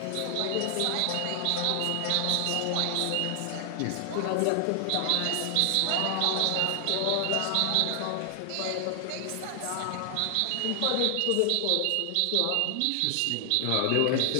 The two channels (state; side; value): different; both; correlation 0.00